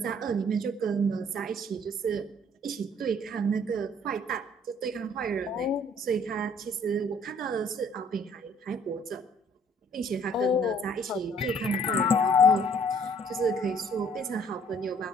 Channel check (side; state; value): both; normal; correlation 0.59